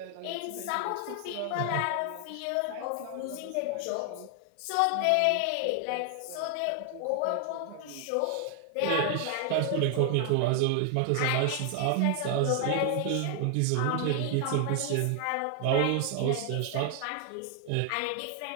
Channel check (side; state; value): both; different; correlation 0.00